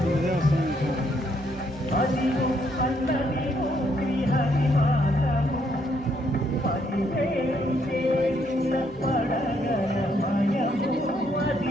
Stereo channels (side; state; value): both; normal; correlation 0.72